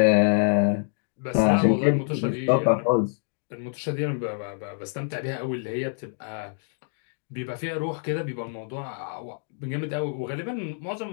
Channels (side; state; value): right; silent; digital silence